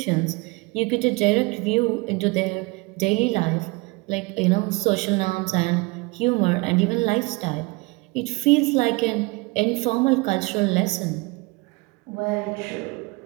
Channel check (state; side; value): quieter; left; 25.8 dB